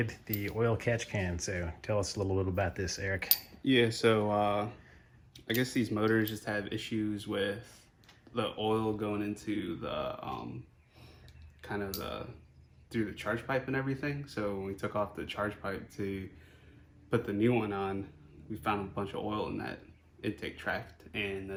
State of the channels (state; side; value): identical; both; correlation 1.00